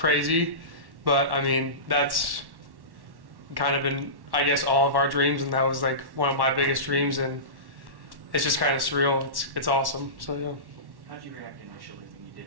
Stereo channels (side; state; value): left; late; 1.1 ms